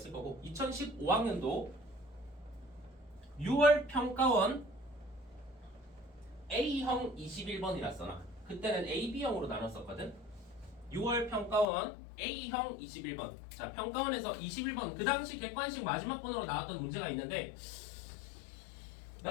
거고 2015학년도 6월 평가원 A형 21번이라 써놔. 그때는 A, B형으로 나눴었거든. 6월 평가원 A형 21번. 자, 평가원에서 21번 그 당시 객관식 마지막 번호로 나왔던 문제가 있는데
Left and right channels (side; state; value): right; drops out; at 11.7 s